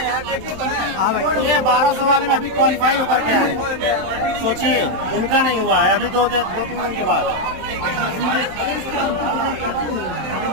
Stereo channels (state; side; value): late; left; 27 ms